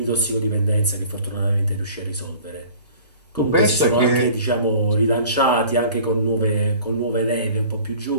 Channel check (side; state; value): both; inverted; correlation -0.46